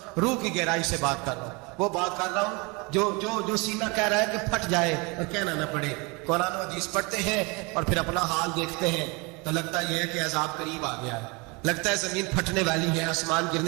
روح کی گہرائی سے بات کر رہا ہوں، وہ بات کر رہا ہوں جو سینہ کہہ رہا ہے کہ پھٹ جائے اور کہنا نہ پڑے۔ قرآن و حدیث پڑھتے ہیں اور پھر اپنا حال دیکھتے ہیں تو لگتا یہ ہے کہ عذاب قریب آ گیا ہے، لگتا ہے زمین پھٹنے والی ہے، آسمان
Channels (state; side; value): quieter; left; 28.3 dB